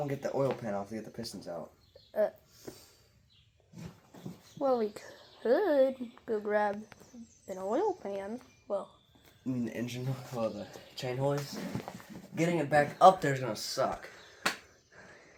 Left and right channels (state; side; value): identical; both; correlation 1.00